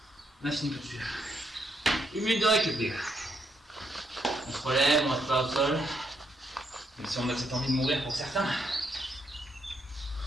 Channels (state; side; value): normal; both; correlation 0.76